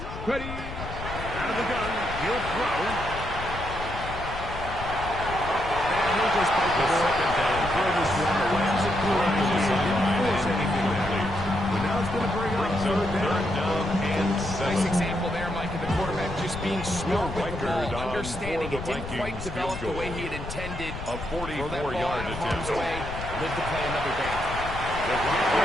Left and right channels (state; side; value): noise; left; rumble, 9 dB below the sound